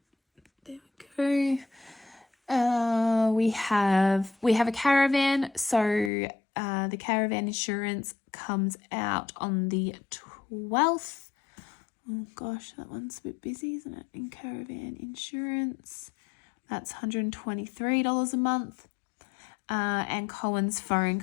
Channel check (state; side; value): drops out; right; at 6.1 s